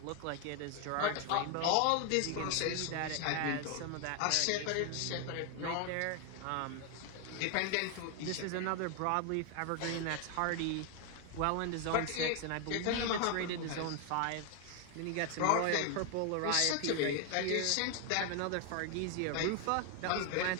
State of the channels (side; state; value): both; different; correlation 0.01